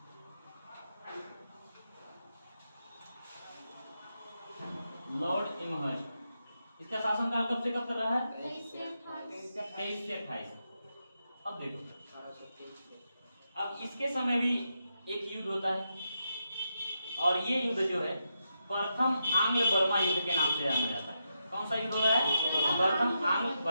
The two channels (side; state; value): both; inverted; correlation -0.85